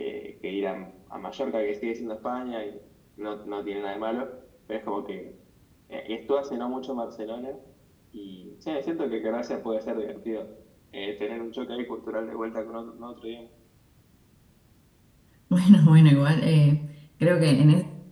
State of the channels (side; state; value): both; identical; correlation 1.00